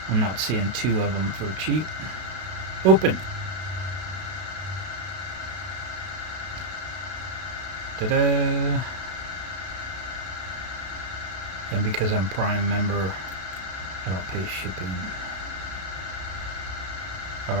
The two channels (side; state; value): left; late; 32 ms